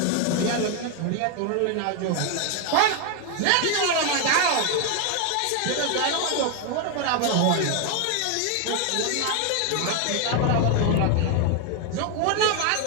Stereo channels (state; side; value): different; both; correlation 0.01